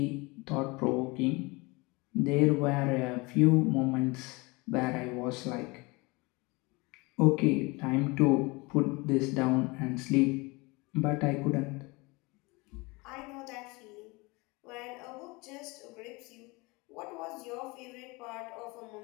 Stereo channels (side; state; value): right; quieter; 25.5 dB